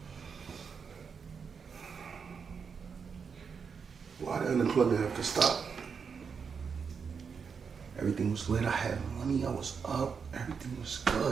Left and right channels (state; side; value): quieter; left; 6.0 dB